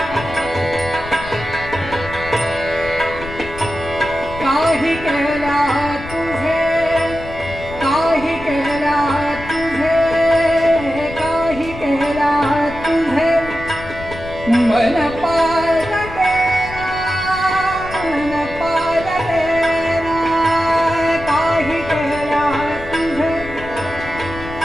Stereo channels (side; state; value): left; noise; rumble, 12 dB below the sound